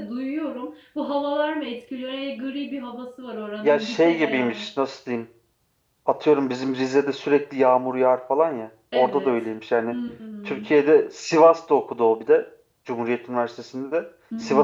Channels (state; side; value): identical; both; correlation 1.00